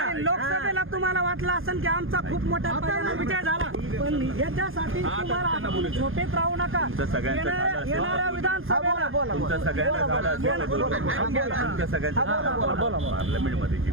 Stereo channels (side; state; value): left; late; 0.60 ms